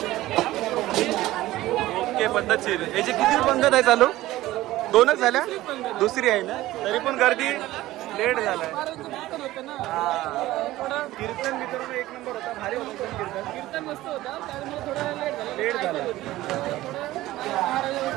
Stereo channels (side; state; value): left; quieter; 16.4 dB